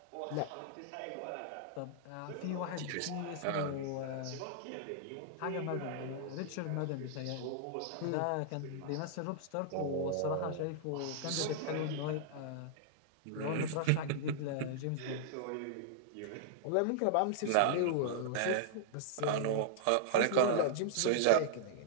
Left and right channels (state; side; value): different; both; correlation -0.01